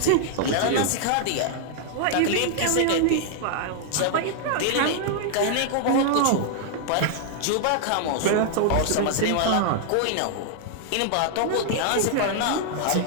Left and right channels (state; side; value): different; both; correlation 0.00